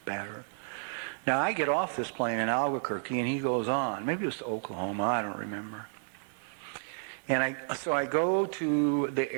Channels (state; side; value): silent; left; 57 dB below the other